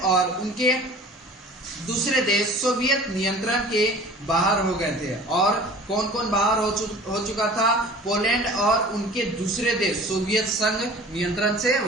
और उनके दूसरे देश सोवियत नियंत्रण के बाहर हो गए थे। और कौन कौन बाहर हो चुका था? पोलैंड और उनके दूसरे देश सोवियत संघ नियंत्रण से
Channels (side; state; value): both; normal; correlation 0.44